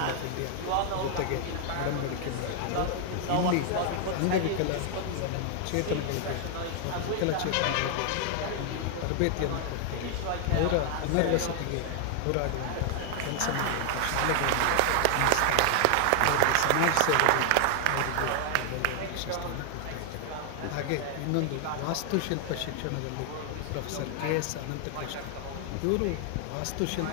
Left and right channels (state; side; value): different; both; correlation 0.00